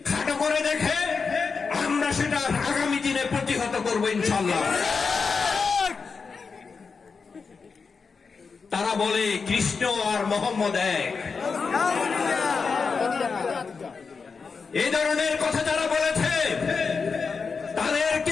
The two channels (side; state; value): right; quieter; 5.1 dB